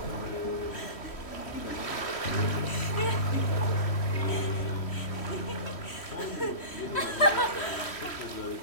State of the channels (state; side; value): late; right; 3.1 ms